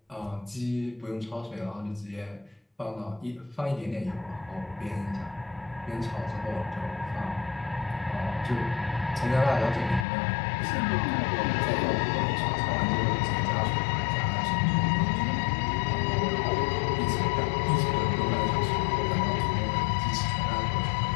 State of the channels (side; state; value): right; drops out; at 10.1 s